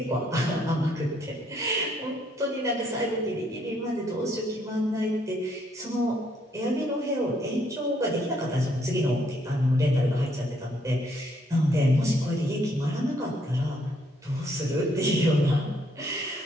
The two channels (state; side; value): normal; both; correlation 0.69